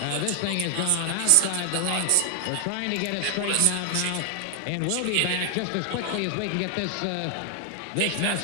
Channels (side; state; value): both; different; correlation 0.00